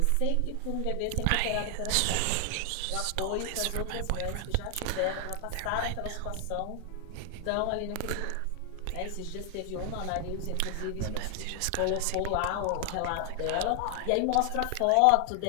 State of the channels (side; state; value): both; different; correlation 0.00